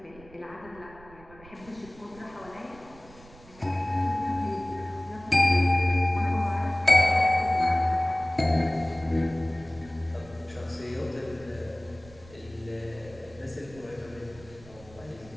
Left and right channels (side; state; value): right; noise; rumble, 22 dB below the sound